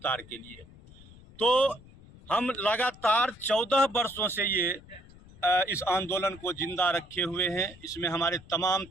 के लिए। तो हम लगातार 14 वर्षों से ये इस आंदोलन को जिंदा रखे हुए हैं। इसमें हमारे तमाम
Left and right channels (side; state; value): left; noise; rumble, 22 dB below the sound